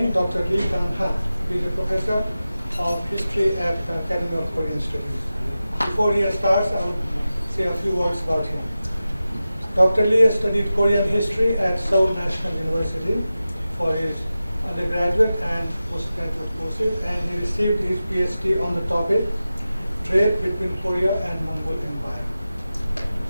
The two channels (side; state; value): both; inverted; correlation -0.94